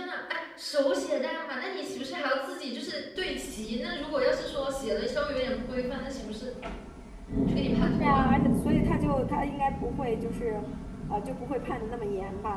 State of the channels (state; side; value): identical; both; correlation 1.00